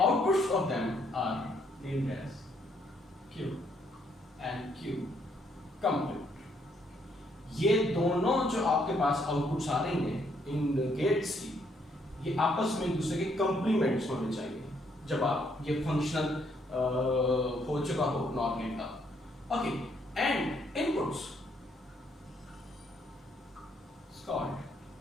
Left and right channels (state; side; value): normal; both; correlation 0.71